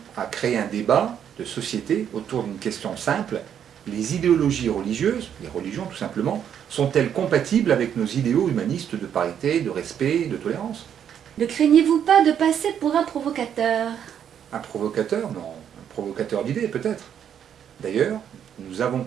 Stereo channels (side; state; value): left; quieter; 8.9 dB